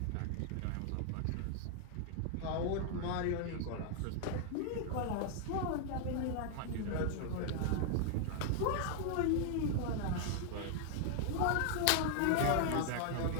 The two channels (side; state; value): both; different; correlation 0.00